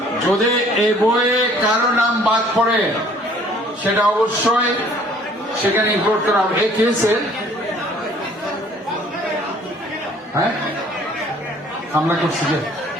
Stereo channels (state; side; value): normal; both; correlation 0.56